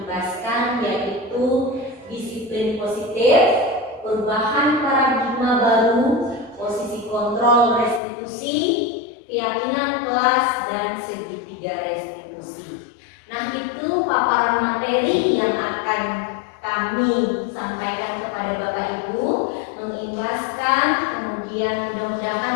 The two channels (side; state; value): right; drops out; at 8.0 s